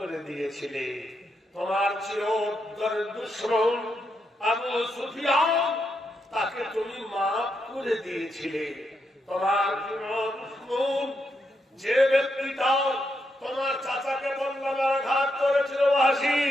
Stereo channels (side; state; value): both; normal; correlation 0.81